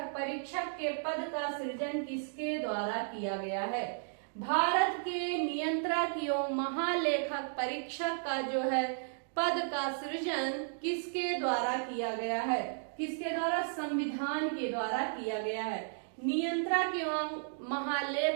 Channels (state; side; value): silent; left; digital silence